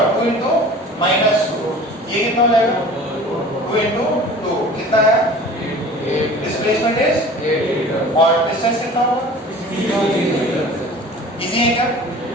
2 इंटू -2, ये कितना हो जाएगा? 2 इंटू 2 कितना है? डिस्प्लेसमेंट इज, और डिस्टेंस कितना होगा? इजी है क्या?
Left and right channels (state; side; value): normal; both; correlation 0.43